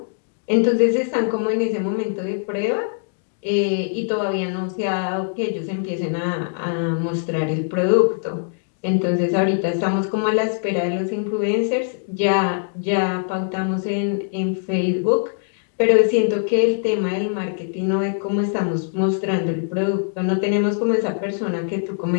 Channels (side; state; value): right; silent; digital silence